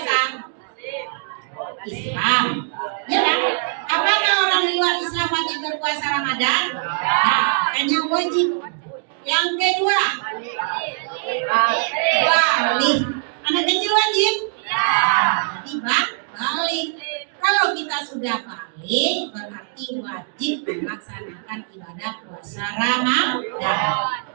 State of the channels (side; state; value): left; silent; digital silence